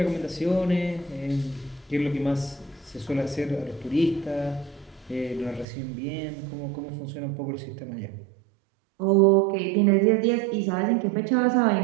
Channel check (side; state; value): left; drops out; at 5.7 s